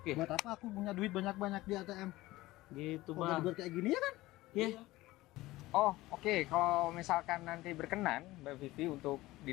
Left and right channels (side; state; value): right; quieter; 18.3 dB